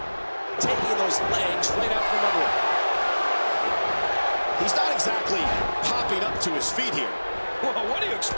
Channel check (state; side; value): inverted; both; correlation -1.00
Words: Taking those legs right out from under him. He's not exactly popping up to his feet here. Well, what do you